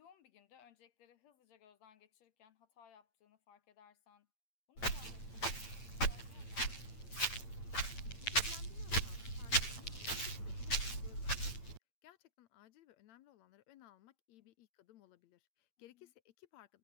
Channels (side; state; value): right; late; 8.8 ms